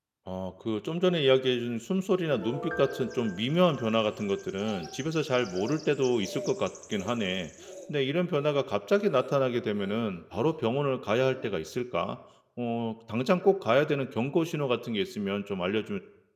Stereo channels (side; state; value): both; identical; correlation 1.00